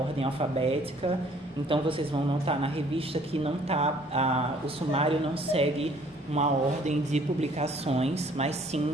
alfabética. Então vocês vão notar na revista que o sumário não segue uma ordem de publicações, mas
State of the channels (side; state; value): both; normal; correlation 0.59